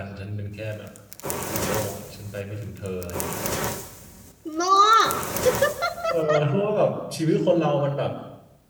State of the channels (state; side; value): identical; both; correlation 1.00